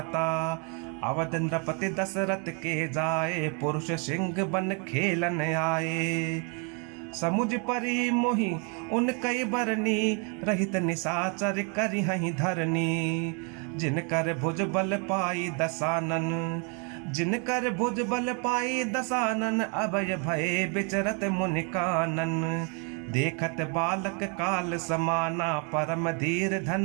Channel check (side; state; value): left; quieter; 36.1 dB